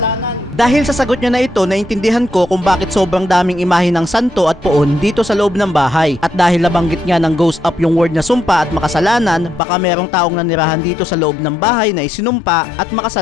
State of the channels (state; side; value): drops out; right; at 9.6 s